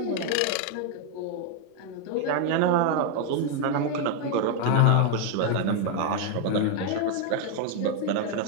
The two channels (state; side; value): different; both; correlation 0.01